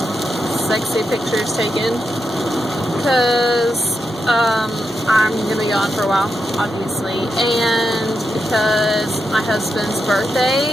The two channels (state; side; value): normal; both; correlation 0.86